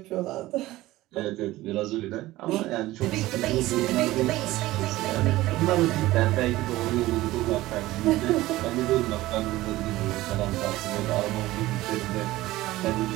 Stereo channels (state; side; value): quieter; left; 17.3 dB